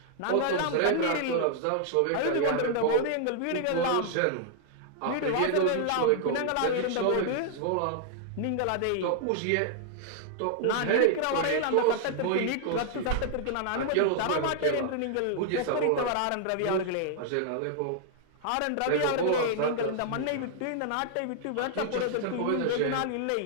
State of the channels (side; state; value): both; different; correlation 0.00